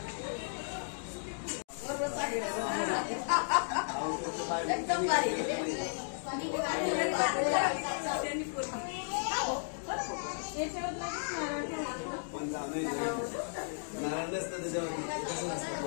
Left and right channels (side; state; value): right; silent; digital silence